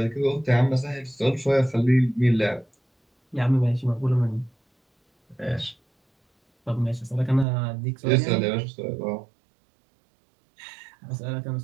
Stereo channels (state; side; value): drops out; left; at 7.5 s